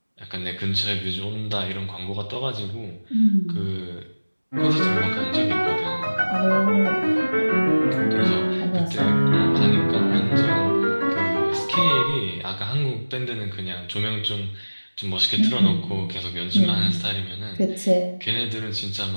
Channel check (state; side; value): inverted; both; correlation -1.00